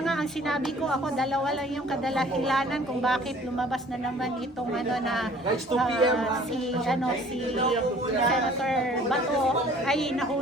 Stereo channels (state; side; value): normal; both; correlation 0.52